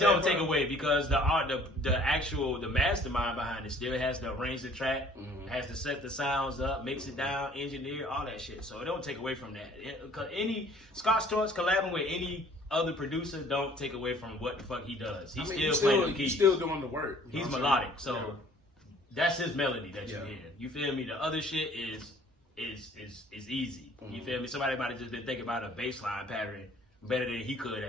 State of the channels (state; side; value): normal; both; correlation 0.55